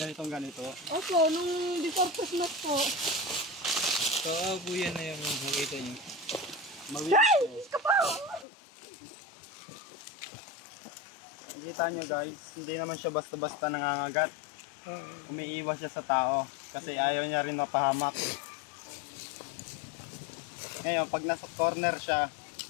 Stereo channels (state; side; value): drops out; right; at 8.5 s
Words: Ganito. Opo, nung before Christmas po. So, buyan na yung nakita nyo. Nakikita nyo guys, hindi naman siya basta-basta nangangagat. Umiiwas siya sa tao kasi ayaw niya rin mapahamak. Ngayon, pag nasa corner siya,